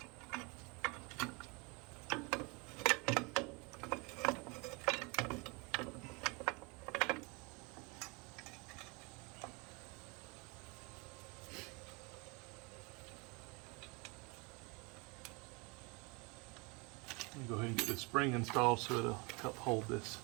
Go ahead and get this spring installed so it'll help hold this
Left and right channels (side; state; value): left; quieter; 29.1 dB